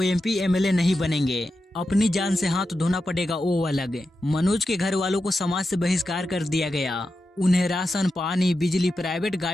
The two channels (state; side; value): normal; both; correlation 0.90